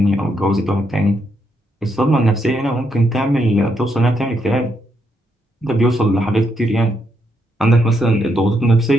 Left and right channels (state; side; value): normal; both; correlation 0.78